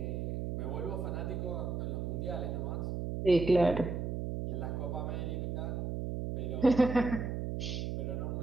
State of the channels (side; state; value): right; noise; hum, 2 dB below the sound